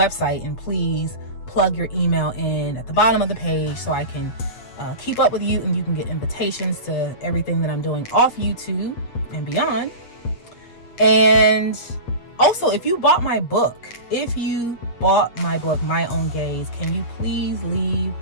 and please plug your email in at the bottom of the page so I can keep up with you, and you can get invitations to everything that I'm doing off YouTube and beyond. And also, if you bought my book, My Own Gaze, can you please leave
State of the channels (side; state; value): right; late; 8.5 ms